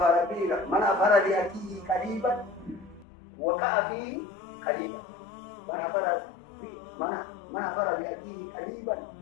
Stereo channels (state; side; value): drops out; right; at 3.1 s